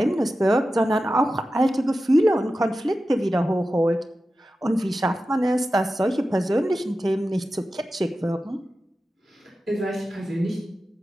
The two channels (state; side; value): normal; both; correlation 0.93